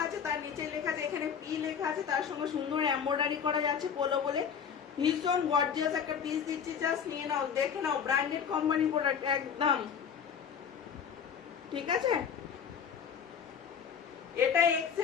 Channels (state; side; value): quieter; right; 7.3 dB